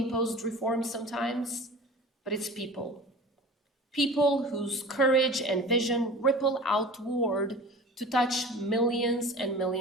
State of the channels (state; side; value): normal; both; correlation 0.38